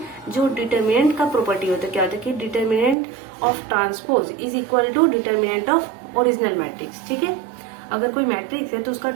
जो डिटर्मिनेंट का प्रॉपर्टी होता है, क्या होता है कि determinant of transpose is equal to determinant of original matrix. ठीक है, अगर कोई मैट्रिक्स है तो उसका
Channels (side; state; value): left; drops out; at 3.0 s